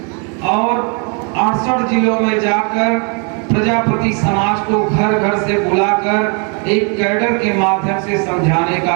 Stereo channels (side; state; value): left; quieter; 36.6 dB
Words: और 68 जिलों में जाकर प्रजापति समाज को घर घर से बुलाकर एक कैडर के माध्यम से समझाने का